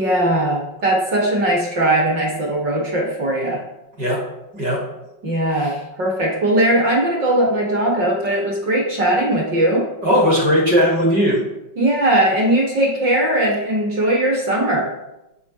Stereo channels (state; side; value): late; left; 5.6 ms